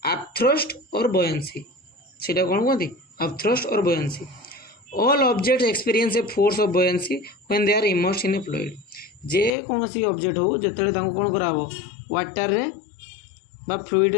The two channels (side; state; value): right; drops out; at 9.5 s